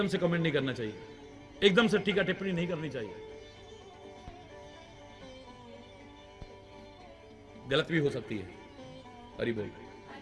से कमेंट नहीं करना चाहिए, एकदम से टीका टिप्पणी नहीं करनी चाहिए। गलत भी हो सकती है। हरि बोल।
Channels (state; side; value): identical; both; correlation 1.00